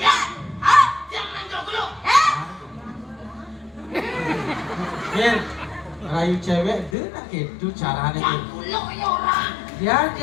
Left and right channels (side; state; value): right; drops out; at 7.0 s